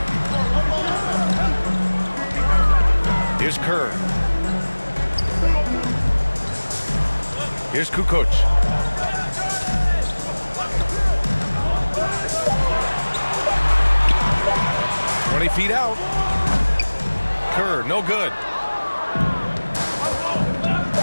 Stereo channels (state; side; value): inverted; both; correlation -1.00